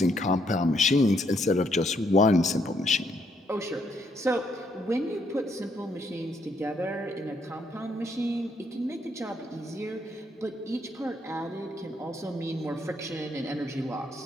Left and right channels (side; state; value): both; normal; correlation 0.73